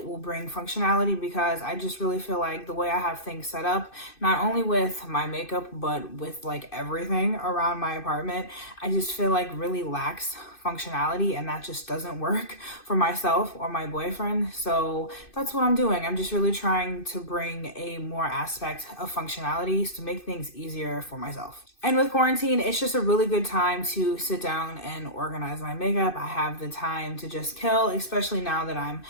will bring functionality, because I just really feel like the way I have things set up, not only with my makeup, but with like everything around my apartment, I just feel like really lacks functionality, and that just doesn't work for myself or my boyfriend. So that's what I'm doing. I'm just really trying to bring a more aspect of functionality to make things easier for myself. And with quarantine, it's just a really good time to sit down and organize my makeup. I have the time to just kill, especially now that I'm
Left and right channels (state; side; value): late; right; 2.6 ms